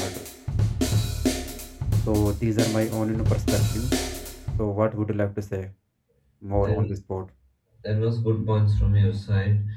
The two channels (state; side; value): identical; both; correlation 1.00